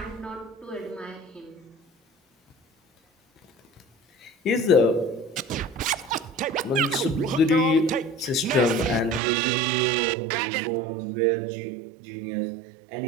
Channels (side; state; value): left; drops out; at 9.2 s